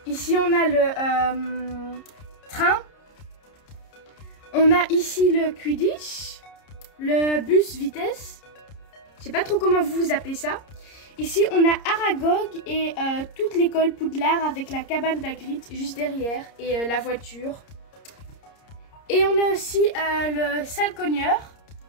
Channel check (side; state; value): right; late; 30 ms